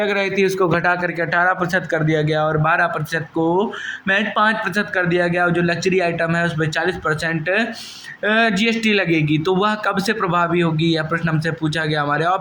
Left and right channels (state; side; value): identical; both; correlation 1.00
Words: रही थी उसको घटा करके 18% कर दिया गया और 12% को महज 5% कर दिया गया। और जो लग्जरी आइटम है उस पर 40% जीएसटी लगेगी। तो वह कब से प्रभावी होगी, यह प्रश्न हमसे पूछा गया। हमारे